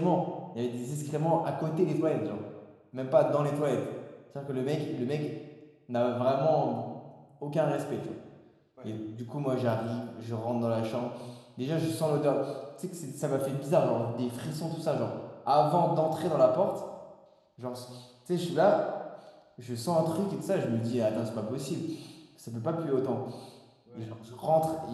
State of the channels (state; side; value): identical; both; correlation 1.00